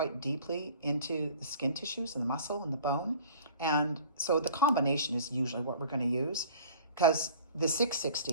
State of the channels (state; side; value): inverted; both; correlation -0.46